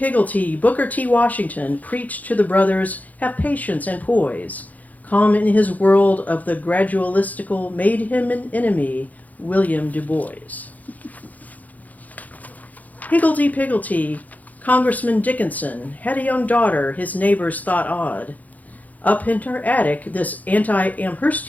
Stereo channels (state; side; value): late; right; 0.078 ms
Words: Booker T. Washington preached to the brothers, have patience and poise. Calm in his world of the gradualistical made him an enemy, William Du Bois. Higgledy-piggledy, Congressman Dickinson had a young daughter his neighbors thought odd. Up in her attic, this